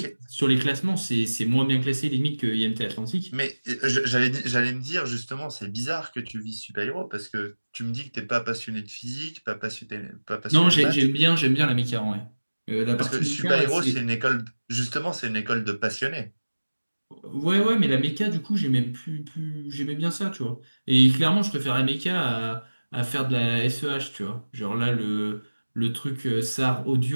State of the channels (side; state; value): both; inverted; correlation -1.00